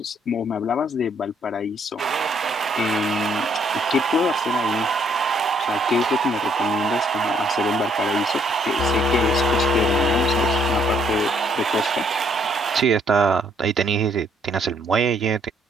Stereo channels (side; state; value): both; normal; correlation 0.67